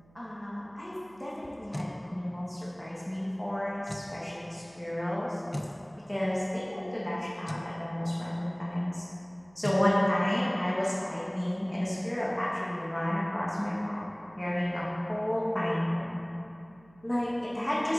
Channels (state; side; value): noise; right; hum, 28 dB below the sound